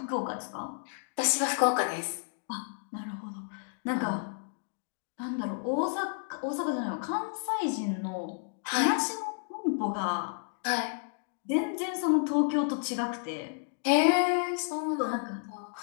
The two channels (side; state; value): right; silent; 57 dB below the other